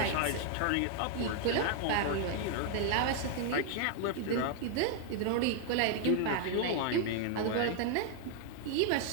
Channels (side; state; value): both; different; correlation 0.00